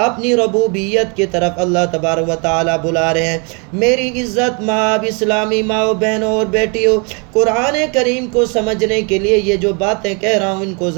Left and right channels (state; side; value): quieter; left; 34.1 dB